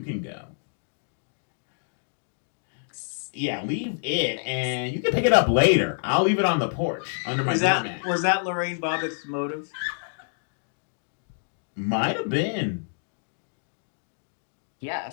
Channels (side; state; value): right; silent; digital silence